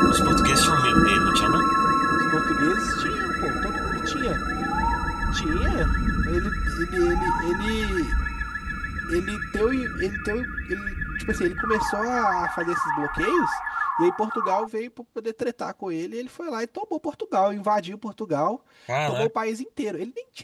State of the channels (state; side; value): identical; both; correlation 1.00